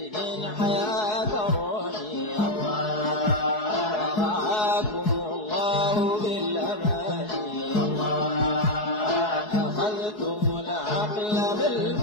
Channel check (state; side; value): late; right; 4.7 ms